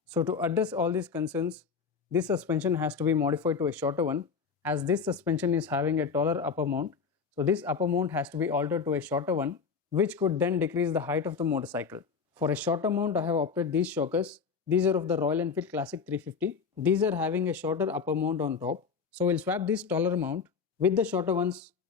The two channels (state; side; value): quieter; right; 5.8 dB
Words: So to address all these concerns, this suspension has to be modified to a shorter one, as this suspension is having a taller upper mount. So this upper mount has to be altered to a shorter one, which could then decrease the height of the motorcycle. For a shorter mount, I have opted these shockers. These are of the Royal Enfield Classic 350. These are having a shorter upper mount on top. So we'll swap this taller mount with the shorter ones